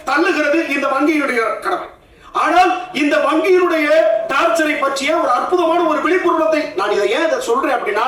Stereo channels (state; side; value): identical; both; correlation 1.00